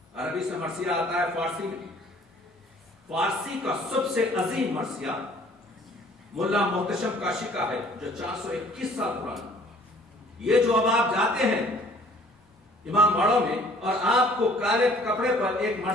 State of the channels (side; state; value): both; normal; correlation 0.55